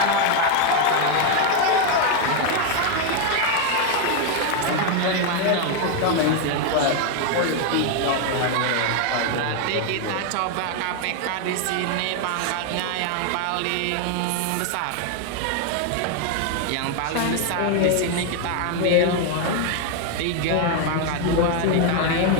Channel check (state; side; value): different; both; correlation 0.01